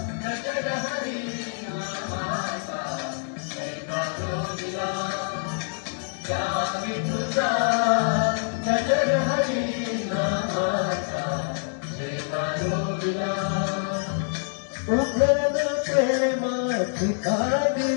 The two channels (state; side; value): silent; right; digital silence